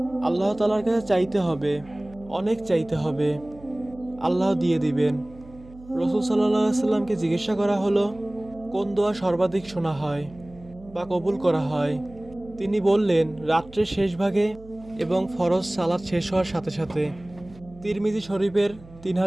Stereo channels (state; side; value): noise; right; hum, 21 dB below the sound